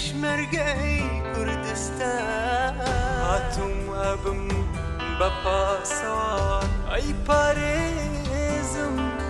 کوردستان هاتووم ئەبم بە پاسەوان ئەی پارێزم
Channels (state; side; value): identical; both; correlation 1.00